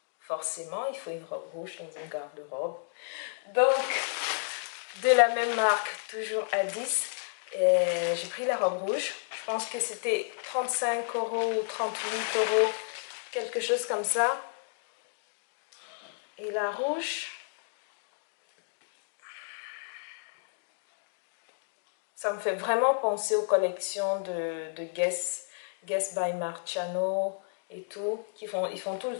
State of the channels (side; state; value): right; silent; digital silence